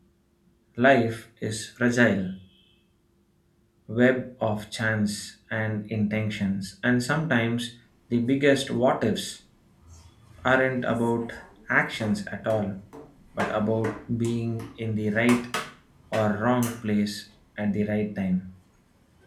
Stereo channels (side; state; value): both; identical; correlation 1.00